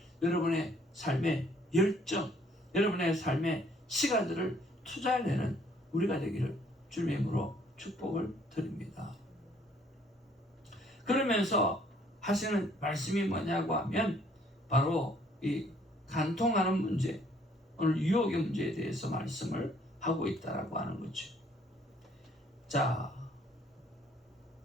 여러분의 삶의 열정, 여러분의 삶의 시간들을 투자해내는 우리가 되기를 주님의 이름으로 축복을 드립니다. 그러면서 하시는 말씀이 뭐냐고 하면 바로 이 간통하는 문제, 오늘 유혹의 문제에 대해서 말씀을 하고 있다라고 하는 거죠. 자,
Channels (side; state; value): both; normal; correlation 0.63